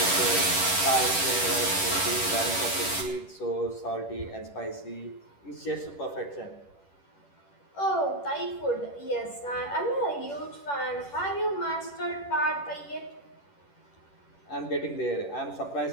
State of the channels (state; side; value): late; right; 10 ms